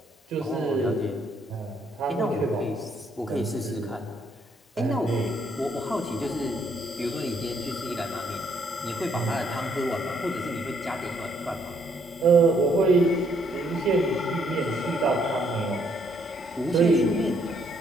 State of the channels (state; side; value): normal; both; correlation 0.70